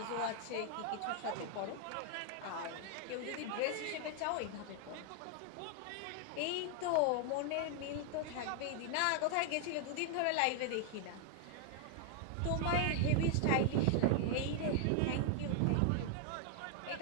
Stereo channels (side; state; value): both; different; correlation 0.00